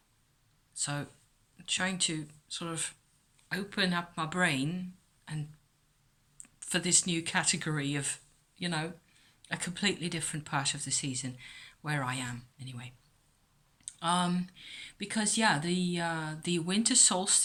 So I'm trying to sort of open up my brain and for this new category of, you know, a completely different part of the season where I am anyway. Um, because yeah, the winter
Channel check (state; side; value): identical; both; correlation 1.00